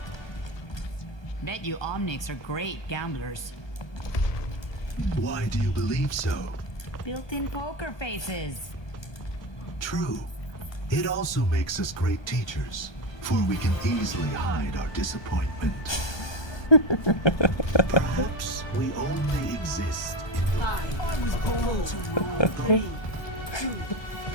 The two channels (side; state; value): right; late; 1.2 ms